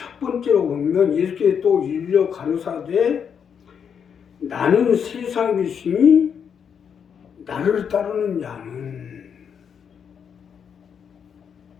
번째로 보면 예수께서 또 일러 가르사되 나는 세상의 빛이니 나를 따르는 자는,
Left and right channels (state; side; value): quieter; right; 7.4 dB